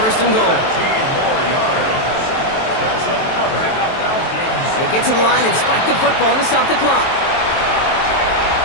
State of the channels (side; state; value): right; late; 23 ms